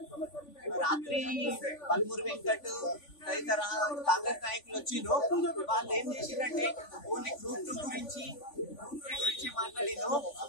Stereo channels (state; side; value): late; right; 3.5 ms